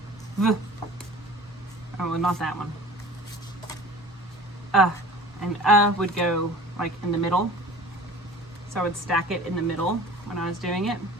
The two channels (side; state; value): both; normal; correlation 0.42